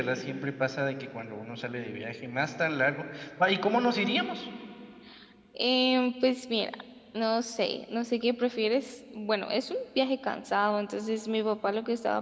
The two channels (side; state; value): both; identical; correlation 1.00